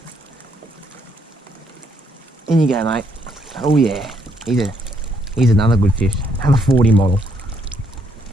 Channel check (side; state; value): both; normal; correlation 0.73